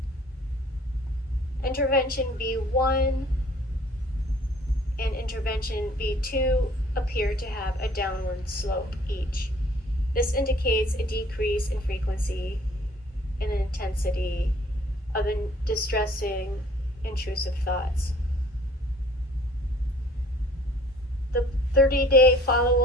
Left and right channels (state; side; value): normal; both; correlation 0.55